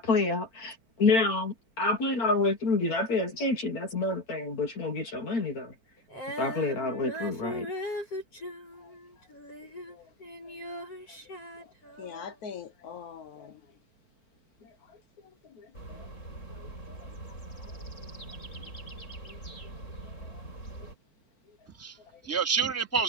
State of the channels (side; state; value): right; late; 4.5 ms